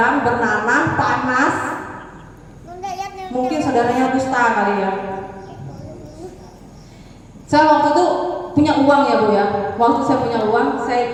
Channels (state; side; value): identical; both; correlation 1.00